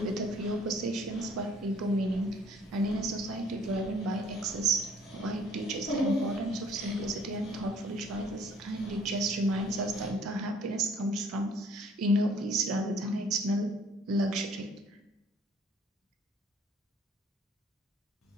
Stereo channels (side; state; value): both; normal; correlation 0.57